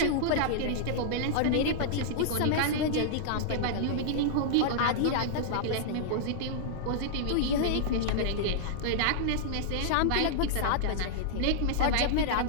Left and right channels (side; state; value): both; different; correlation -0.02